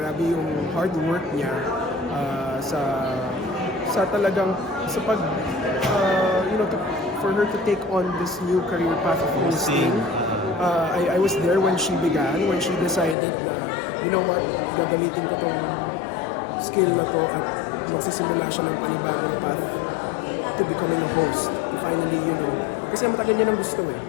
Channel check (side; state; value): right; drops out; at 13.2 s